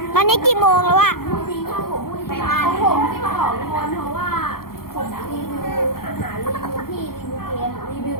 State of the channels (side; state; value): right; late; 0.93 ms